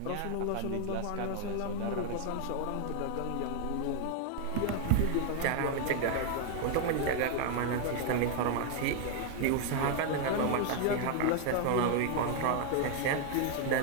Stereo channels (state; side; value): different; both; correlation 0.00